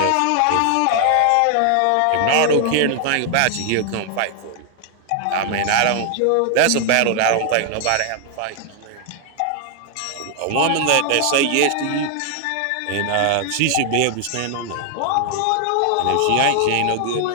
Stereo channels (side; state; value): both; different; correlation 0.00